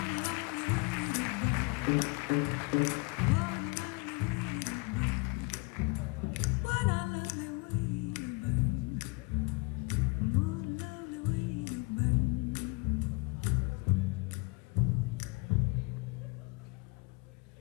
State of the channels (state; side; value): quieter; right; 27.6 dB